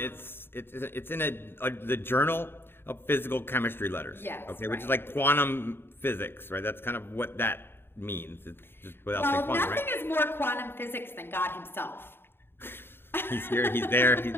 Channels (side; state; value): right; late; 0.11 ms